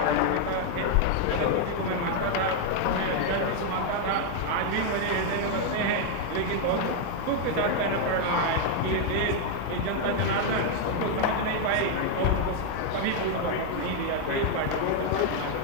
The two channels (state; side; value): different; both; correlation 0.00